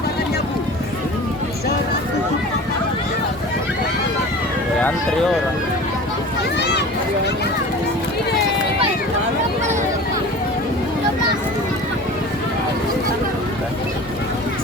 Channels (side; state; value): both; normal; correlation 0.38